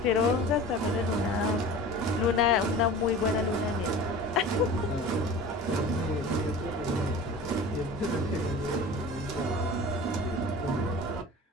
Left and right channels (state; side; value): normal; both; correlation 0.38